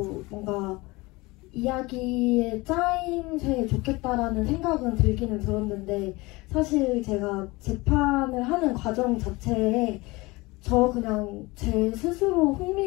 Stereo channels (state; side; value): quieter; right; 22.8 dB